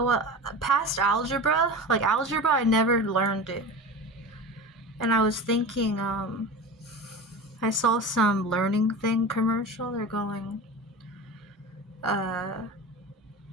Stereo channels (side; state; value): both; normal; correlation 0.30